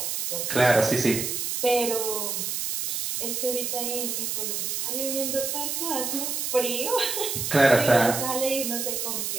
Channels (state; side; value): noise; right; hiss, 2 dB below the sound